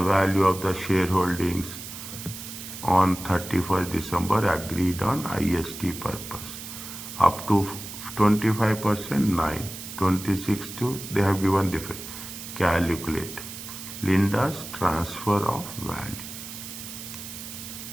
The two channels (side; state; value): right; noise; hiss, 11 dB below the sound